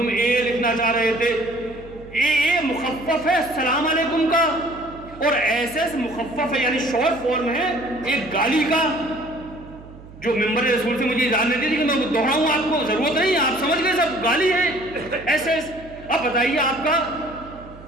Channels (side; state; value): right; noise; hum, 18 dB below the sound